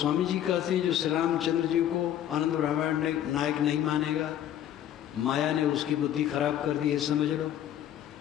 जी कहते हैं जो श्री रामचंद्र जी को आनंद रामायण नायक नहीं मानेगा, माया ने उसकी बुद्धि खराब कर दी है, समझ लो।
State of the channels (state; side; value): quieter; right; 11.1 dB